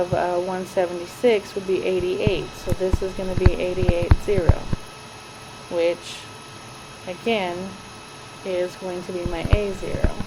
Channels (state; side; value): identical; both; correlation 1.00